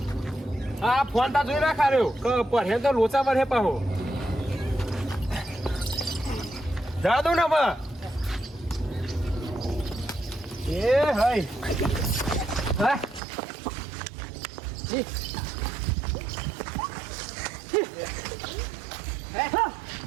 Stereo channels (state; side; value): drops out; left; at 13.2 s